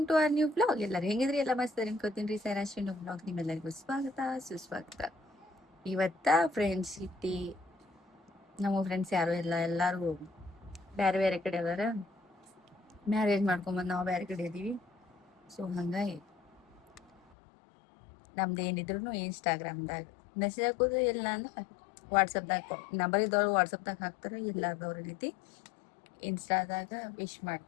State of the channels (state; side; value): drops out; right; at 17.2 s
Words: to our new blog. ಎಲ್ಲರೂ ಹೆಂಗಿದ್ರಿ? ಎಲ್ಲ ಮಸ್ತ್ ಅನ್ಕೋತೀನಿ ರೀ. ಸೈರಾಶ್ರೀ ಬ್ಲಾಗ್ ನಿಮ್ಮೆಲ್ಲರಿಗೂ ಸ್ವಾಗತ ಸುಸ್ವಾಗತ. ಇವತ್ತ ಫ್ರೆಂಡ್ಶಿಪ್ ಡೇ. ನಮ್ಮ ಫ್ರೆಂಡ್ಸ್ ಯಾರು ಇಲ್ಲ, ಎಲ್ಲರೂ ಬೇರೆ ಬೇರೆ ಕಡೆ ಅದಾರ. ಮ್ಯಾರೇಜ್ ಮಾಡ್ಕೊಂಬಂದು ನಾವು ಬೇರೆ ಕಡೆ ಇದೀವಿ. ಸೊ ಹಂಗಾಗಿ ನಮ್ದು ಏನಿದ್ರು ಇನ್ಸ್ಟಾಗ್ರಾಮ್ದಾಗ ಮೆಸೇಜ್ ಹಾಕೋದು, ಇಲ್ಲ ಅಂದ್ರೆ ವಾಟ್ಸಪ್ದಾಗ ನಂಬರ್ ಇದ್ದವ್ರು ವಾಟ್ಸಪ್ದಾಗ ಹಾಕ್ತಾರೆ, ಇಲ್ಲಾರ್ದವ್ರ ರೀತಿ ಇನ್ಸ್ಟಾದಾಗ ವಿಶ್